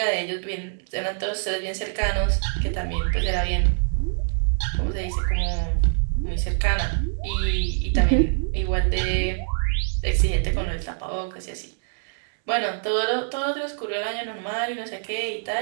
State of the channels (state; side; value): silent; left; 59 dB below the other